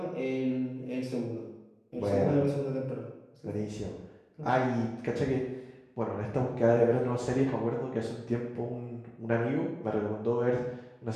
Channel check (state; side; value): identical; both; correlation 1.00